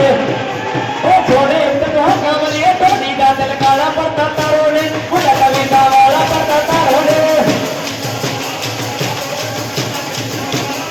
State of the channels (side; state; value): both; identical; correlation 1.00